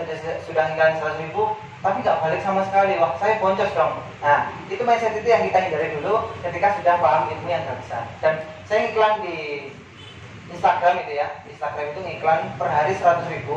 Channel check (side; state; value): both; identical; correlation 1.00